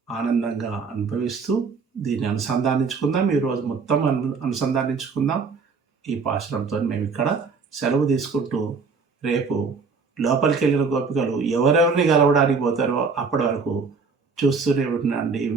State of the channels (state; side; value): quieter; left; 4.9 dB